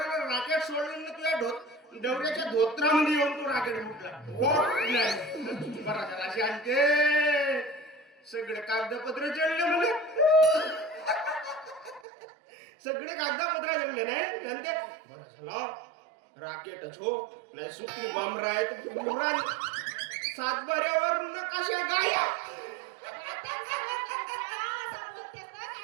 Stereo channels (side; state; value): left; drops out; at 12.0 s